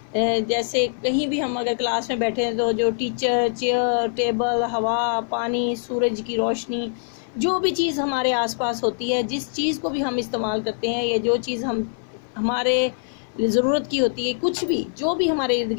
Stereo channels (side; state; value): right; silent; 58 dB below the other